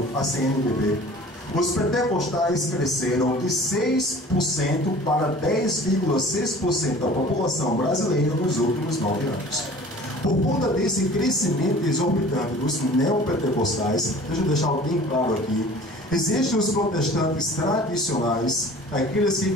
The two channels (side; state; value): both; normal; correlation 0.45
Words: à CNBB, os pentecostais cresceram de 6% para 10,6% da população brasileira nos últimos 9 anos. Por conta desse crescimento exorbitante dos neopentecostais, deixa eu deixar bem claro aqui, existem os protestantes tradicionais, aqueles que